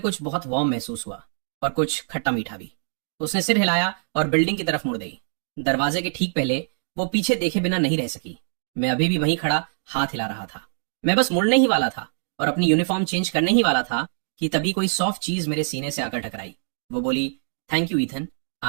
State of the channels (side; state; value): left; silent; digital silence